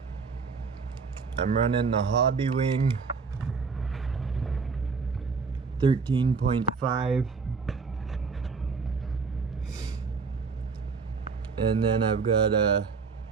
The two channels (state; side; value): quieter; left; 5.0 dB